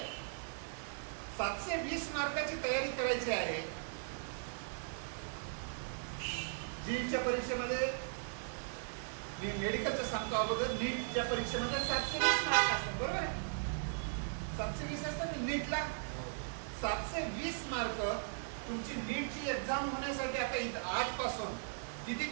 720 मार्काची तयारी करायची आहे. जीच्या परीक्षेमध्ये मी मेडिकलचं सांगतो अगोदर, नीटच्या परीक्षेमध्ये 720 मार्क असतात, बरोबर आहे? 720 असतात नीटला. 720 मार्क तुमची नीटची एक्झाम होण्यासाठी आता आजपासून किती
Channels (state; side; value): silent; left; 52 dB below the other